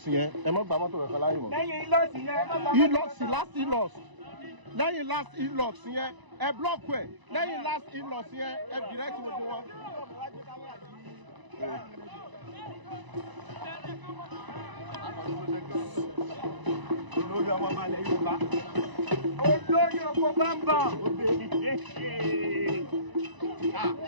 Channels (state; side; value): late; left; 1.0 ms